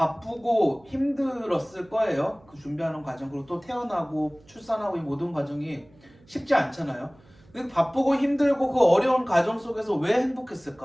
힘들었을 거예요. 그 준비하는 과정, 그리고 또 태어나고 출산하고 이 모든 과정이 쉽지 않잖아요. 근데 바쁘고 힘들고 그 어려운 과정 속에서 왜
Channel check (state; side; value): noise; right; hum, 28 dB below the sound